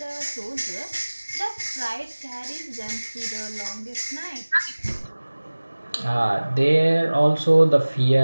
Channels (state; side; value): inverted; both; correlation -1.00